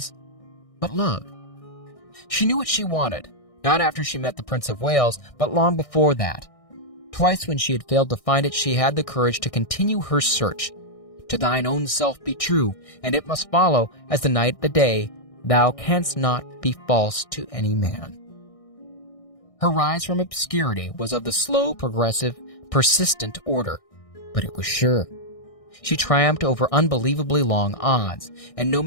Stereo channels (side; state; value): right; late; 1.6 ms